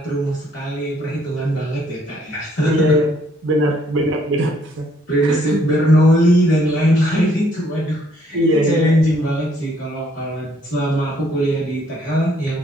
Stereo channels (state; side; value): normal; both; correlation 0.66